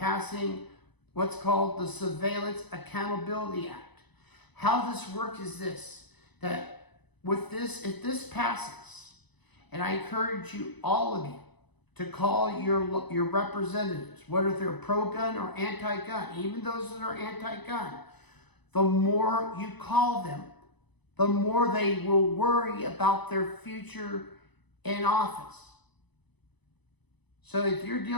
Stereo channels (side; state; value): right; late; 1.0 ms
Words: what's called the Surveillance Accountability Act. How this works is this, that with this, if this passes, and I encourage you, all of you, to call your representatives, whether they're pro-gun or anti-gun, even those that are anti-gun, the more you call them, the more they will worry about their future in office. So if you're